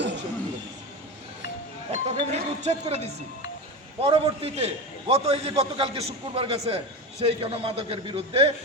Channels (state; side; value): normal; both; correlation 0.22